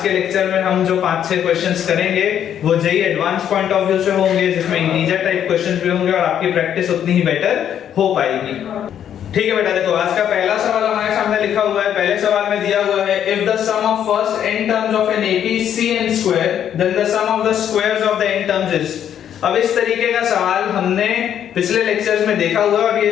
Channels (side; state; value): right; quieter; 9.6 dB